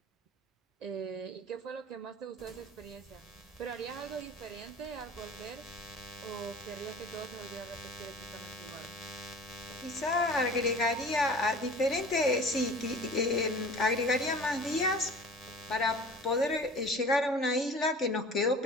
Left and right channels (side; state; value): both; normal; correlation 0.42